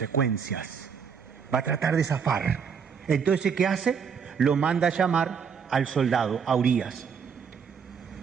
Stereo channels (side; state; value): left; quieter; 6.6 dB